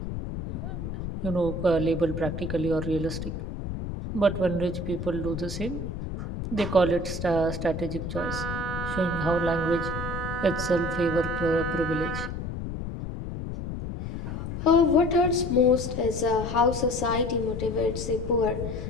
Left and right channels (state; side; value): noise; left; rumble, 6 dB below the sound